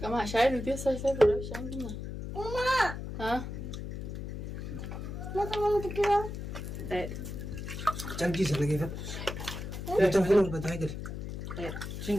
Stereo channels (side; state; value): left; noise; hum, 7 dB below the sound